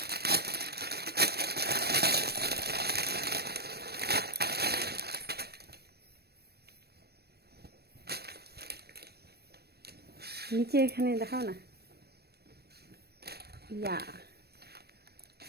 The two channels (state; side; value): late; left; 0.47 ms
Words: নিচে এখানে দেখাও না, ইয়া